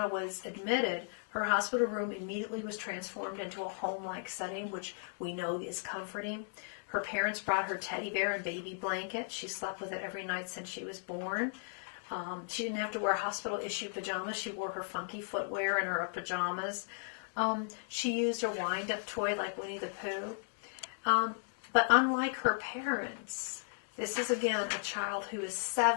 was admitted, her hospital room immediately was transformed into a home-like setting, which we know is comforting. Her parents brought her teddy bear and baby blanket. She slept with it every night since she was born. She didn't have to wear hospital-issued pajamas. She wore her funky footwear and her pajamas. She used a wind-up toy like Winnie the Pooh. But unlike her parents, this is again a child who is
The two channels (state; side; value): silent; right; digital silence